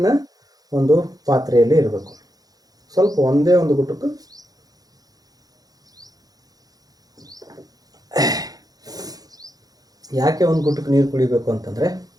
ಒಂದು ಪಾತ್ರೆಯಲ್ಲಿ ಇರಬೇಕು. ಸ್ವಲ್ಪ ಒಂದೇ ಒಂದು ಗುಟುಕು ಯಾಕೆ ಒಂದು ಗುಟುಕು ನೀರು ಕುಡಿಬೇಕು ಅಂತಂದರೆ,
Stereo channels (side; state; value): left; late; 0.18 ms